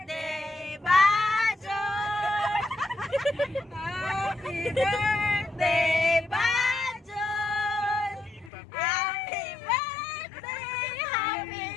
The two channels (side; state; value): right; drops out; at 8.5 s